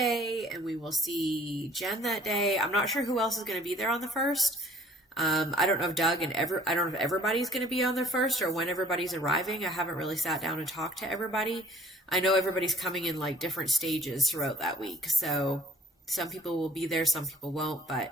and we will see Jen that day. I'm not sure who else is going to be there on the 1st. I don't know if Doug and I don't know if everybody's going to be on the 1st or when everybody's arriving. I haven't really sat down and talked to everybody. I know everybody's coming in like different stages throughout that week. So some people will be there, some people won't. But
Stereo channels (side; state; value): both; normal; correlation 0.56